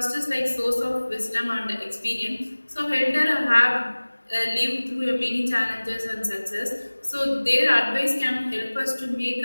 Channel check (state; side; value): inverted; both; correlation -1.00